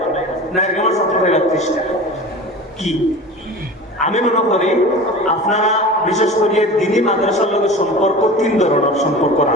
নাইরগ্রামের ছাত্র ফাইদা 30টা। কি আমি মনে করি আপনারা বিশেষ করে দিনী মাদ্রাসার লগে সম্পর্ক 3 ধরনের সম্পর্ক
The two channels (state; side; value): normal; both; correlation 0.35